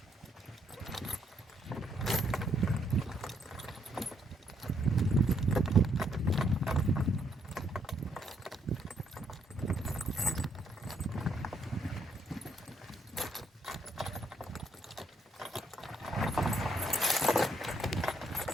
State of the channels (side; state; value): both; normal; correlation 0.73